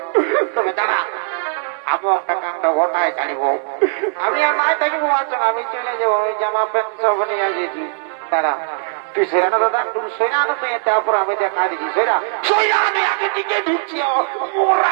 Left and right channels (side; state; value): left; silent; 58 dB below the other